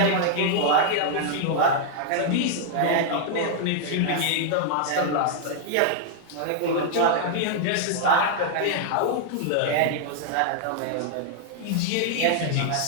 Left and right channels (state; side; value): different; both; correlation -0.01